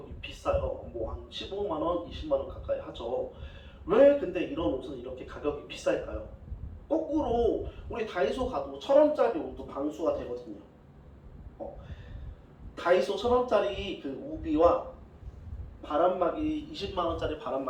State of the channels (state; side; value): identical; both; correlation 1.00